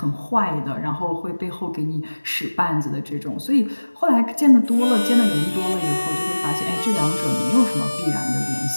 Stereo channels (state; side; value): inverted; both; correlation -1.00